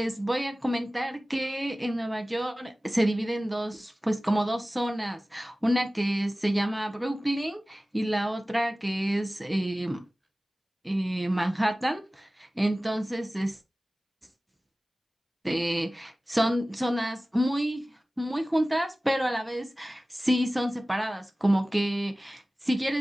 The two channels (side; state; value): both; normal; correlation 0.97